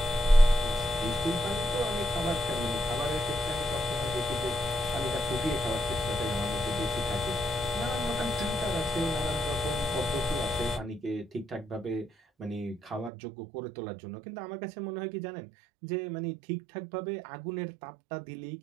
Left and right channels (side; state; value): left; drops out; at 13.1 s